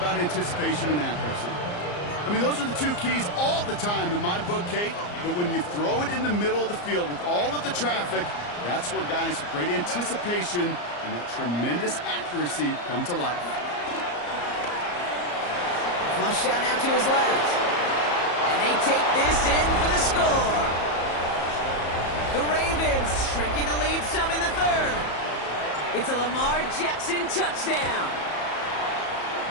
anticipation and accuracy. I mean, those are the two keys all the time in my book, Kate. But when you throw it in the middle of the field with all of the traffic, that's where guys with great anticipation and that tremendous accuracy come to life. Flush down out to his left. And they take this in for the score. The Ravens shrinking the lead some in the third. It's a Lamar Jackson touchdown.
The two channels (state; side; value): late; right; 34 ms